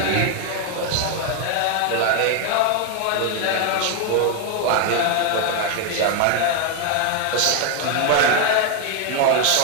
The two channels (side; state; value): both; different; correlation 0.01